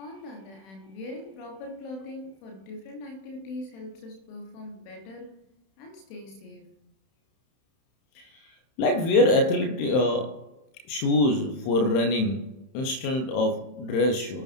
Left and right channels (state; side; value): late; right; 31 ms